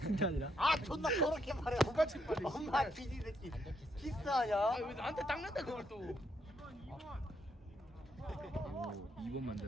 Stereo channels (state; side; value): normal; both; correlation 0.76